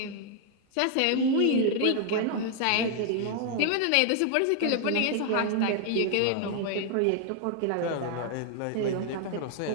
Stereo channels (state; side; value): different; both; correlation 0.00